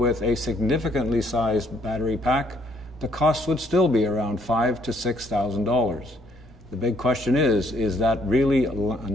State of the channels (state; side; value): normal; both; correlation 0.67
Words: a significantly sized battery pack, the cost would still be around $5,000 to $6,000. The big question is that really